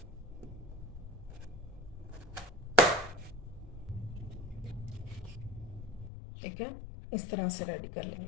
ठीक है, इस तरह से रेडी कर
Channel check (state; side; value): drops out; right; at 6.1 s